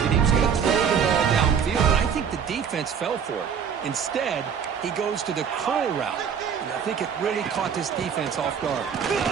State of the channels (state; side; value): quieter; left; 7.3 dB